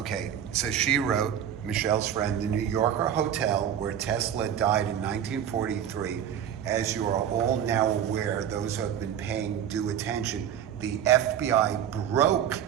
so she wrote, Michelle's friend, the New Yorker Hotel where Tesla died in 1943. As you are all now aware, those who have been paying due attention, the FBI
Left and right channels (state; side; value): quieter; left; 9.4 dB